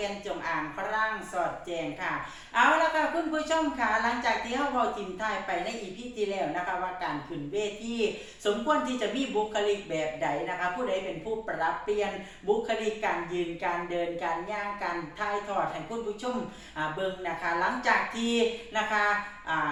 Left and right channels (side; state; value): both; identical; correlation 1.00